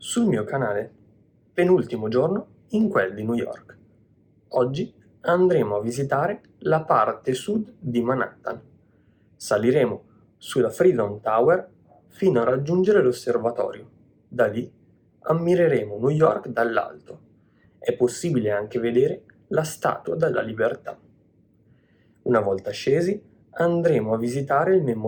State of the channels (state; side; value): identical; both; correlation 1.00